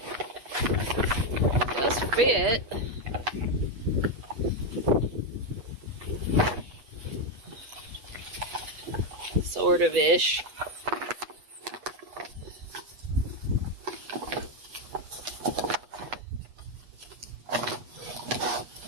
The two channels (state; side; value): late; left; 8.2 ms